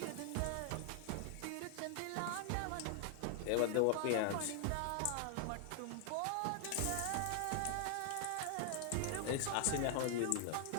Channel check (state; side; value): different; both; correlation 0.00